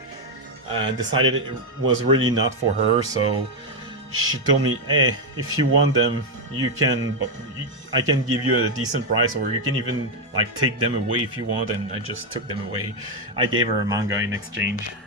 and decided it was really not for her, so she told me, hey, if you want them, I can give you a decent price, or you can even like take them away if you want. And I just took them away. I gave her a manga in exchange.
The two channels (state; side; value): normal; both; correlation 0.03